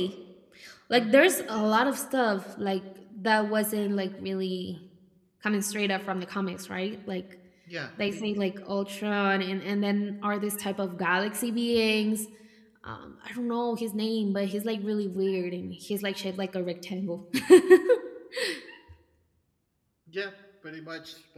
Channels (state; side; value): identical; both; correlation 1.00